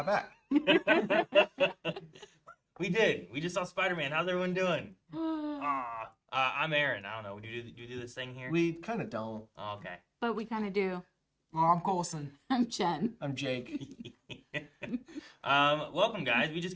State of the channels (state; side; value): identical; both; correlation 1.00